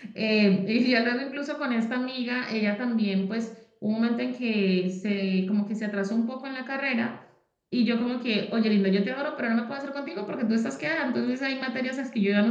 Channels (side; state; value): both; identical; correlation 1.00